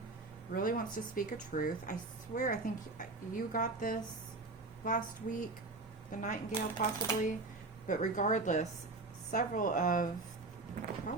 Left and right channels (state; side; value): quieter; left; 3.4 dB